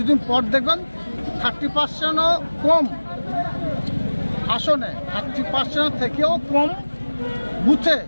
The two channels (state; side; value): inverted; both; correlation -1.00